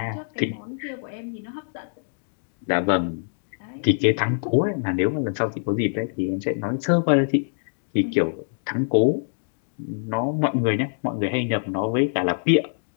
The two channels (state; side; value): silent; right; digital silence